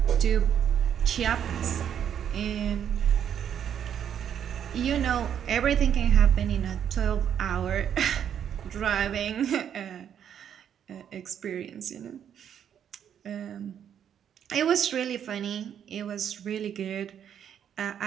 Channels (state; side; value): quieter; left; 9.0 dB